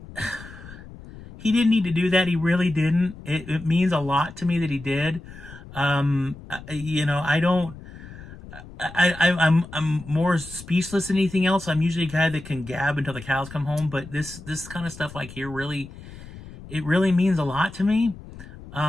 he didn't need to do that. He really didn't. It means a lot to me that he did. I'm more speechless than anything else. I'm usually a guy that can gab until the cows come home, but this kind of stuff like here really, it really means a lot to me.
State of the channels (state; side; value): noise; left; rumble, 16 dB below the sound